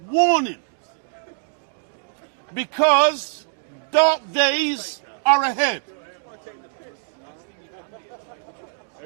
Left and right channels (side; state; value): left; silent; digital silence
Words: warning, because dark days are ahead.